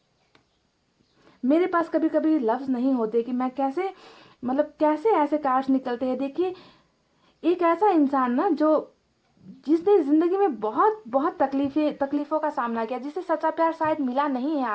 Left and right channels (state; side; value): identical; both; correlation 1.00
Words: मेरे पास कभी कभी लफ्ज नहीं होते कि मैं कैसे, मतलब कैसे ऐसे कार्ड्स निकलते हैं। देखिए, एक ऐसा इंसान ना जो, जिसने जिंदगी में बहुत बहुत तकलीफों का सामना किया, जिसे सच्चा प्यार शायद मिला नहीं है